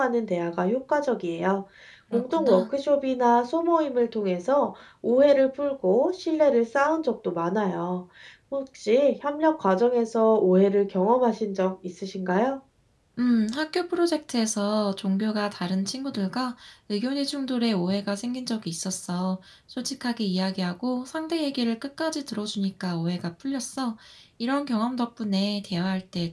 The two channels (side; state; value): both; identical; correlation 1.00